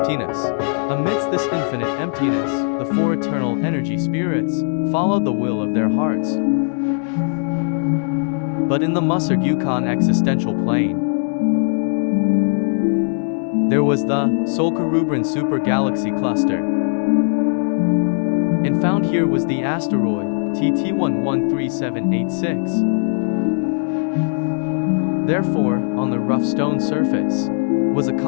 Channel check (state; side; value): silent; right; 60 dB below the other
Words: Amidst this infinite emptiness, the four eternal energy spirits followed the will of their hearts. But in the Musar Yukon existential plane, there was the Solkerubran super galaxy cluster. And found here was the asteroid TT113786. Therefore, on the rough stone surface, was a